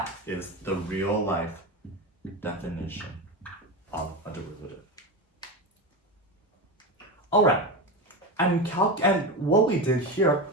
is the real life definition of a derivative. Alright, and what we did here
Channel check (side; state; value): both; normal; correlation 0.19